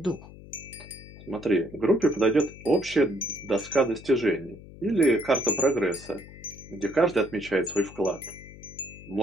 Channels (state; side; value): noise; left; hum, 17 dB below the sound